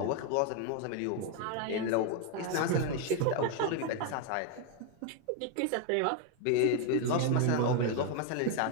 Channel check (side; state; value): both; different; correlation 0.01